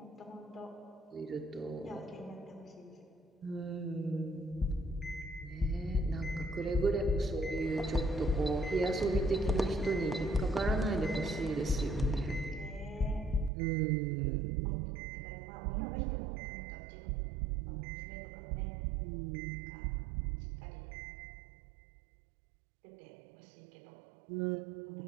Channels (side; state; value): left; drops out; at 13.5 s